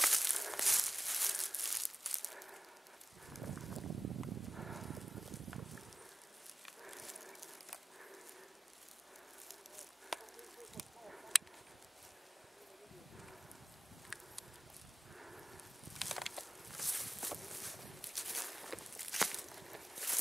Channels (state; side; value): normal; both; correlation 0.96